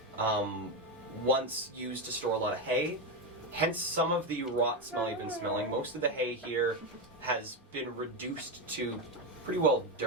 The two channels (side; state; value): both; normal; correlation 0.11